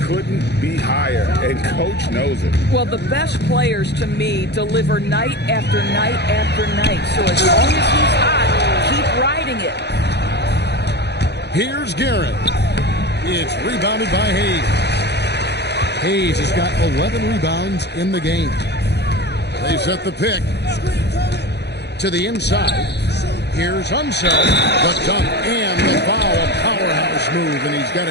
couldn't be higher, and coach knows it. Well, the best players, to me, deliver night after night after night. So as long as he's hot, keep riding it. Here's Garrett. It's rebounded by Hayes. Hayes has got 11 rebounds in the game. They set the pick to the inside. Here's Unseld, the dunk and the foul, a powerhouse move, and he's got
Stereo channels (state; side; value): late; right; 0.49 ms